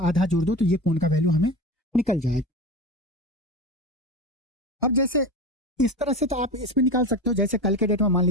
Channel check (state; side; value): normal; both; correlation 0.26